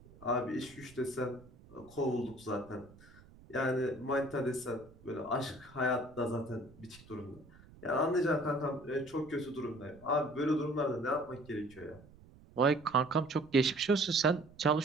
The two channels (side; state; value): right; noise; rumble, 23 dB below the sound